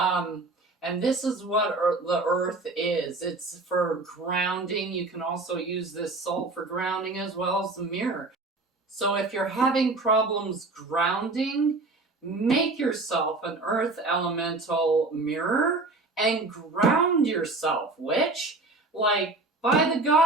this is what the earth is. It's for grounding. You can also use this salt for grounding as well as the mirror. So if you're having problems grounding, make yourself an earth elemental mirror and ground yourself, witch. Like, by the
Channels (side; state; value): left; quieter; 3.3 dB